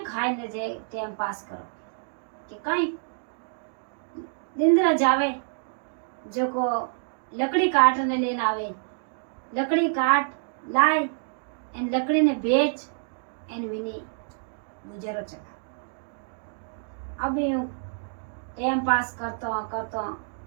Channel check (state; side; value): silent; left; digital silence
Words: खाए न जे टाइम पास करो कि कहीं दिंदरा जावे जो को लकड़ी काटने लेना आवे लकड़ी काट लाए एन लकड़ी ने बेच एन विनी गुजरो चला। अब यूं टाइम पास करतो